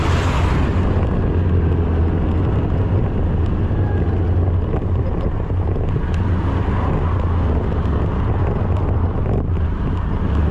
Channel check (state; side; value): identical; both; correlation 1.00